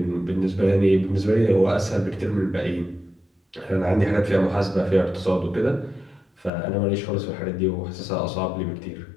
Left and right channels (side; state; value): right; drops out; at 6.5 s